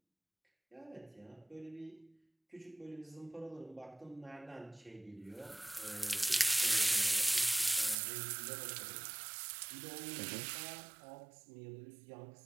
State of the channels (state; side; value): drops out; left; at 8.0 s